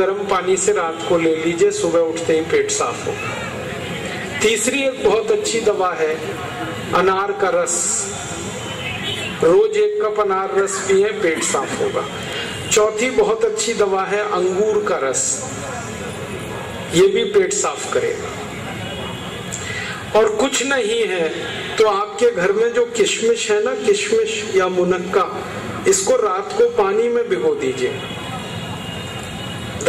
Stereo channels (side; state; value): both; identical; correlation 1.00